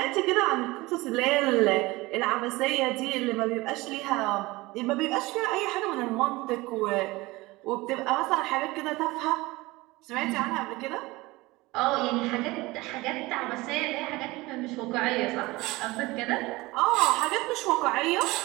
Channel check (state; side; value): quieter; left; 21.2 dB